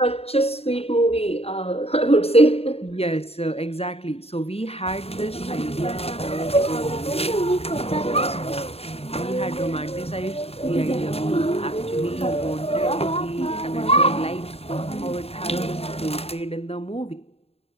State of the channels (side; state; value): right; late; 0.29 ms